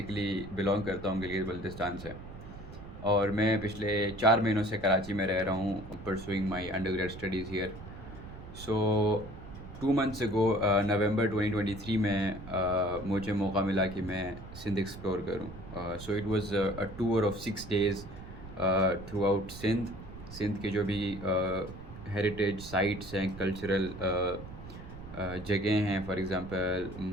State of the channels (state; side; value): noise; right; rumble, 13 dB below the sound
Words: बिलोंग करता हूँ गिलगित बल्तिस्तान से। और मैं पिछले 4 महीनों से कराची में रह रहा हूँ pursuing my undergrad studies here. So 2 months ago November 2023 में मुझे मौका मिला कि मैं सिंध एक्सप्लोर करूँ। So it was a tour of 6 days throughout Sindh. Sindh के जो भी हेरिटेज साइट्स हैं, कल्चरल जगह हैं, फॉर एग्ज़ाम्पल